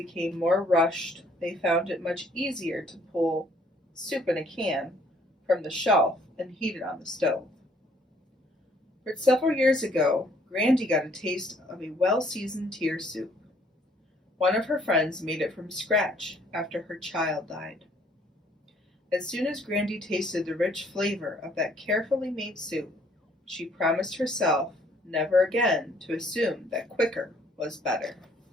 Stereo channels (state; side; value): normal; both; correlation 0.63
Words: more rushed, they found it much easier to pull soup in a can from the shelf and heat it on the stove. But several years ago, Grandy got a taste of a well-seasoned tear soup. One of her friends made it from scratch after her child died. As soon as Grandy tasted the rich flavor of that carefully made soup, she promised herself never again to assume that quicker was better.